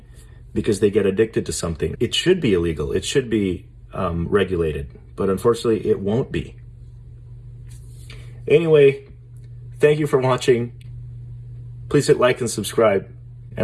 because they get addicted to something. It should be illegal. It should be regulated, but unfortunately it won't be. Anyway, thank you for watching. Please hit like and subscribe,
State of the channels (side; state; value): both; identical; correlation 1.00